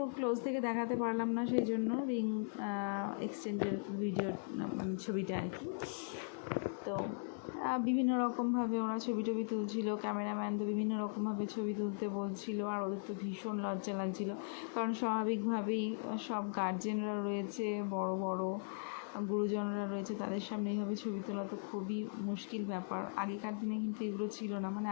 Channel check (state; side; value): silent; right; 52 dB below the other